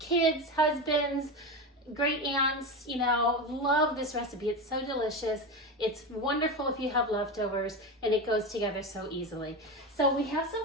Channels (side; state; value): both; normal; correlation 0.20